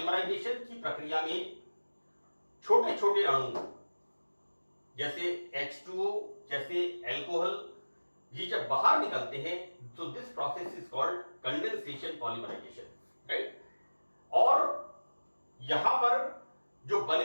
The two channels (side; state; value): both; inverted; correlation -1.00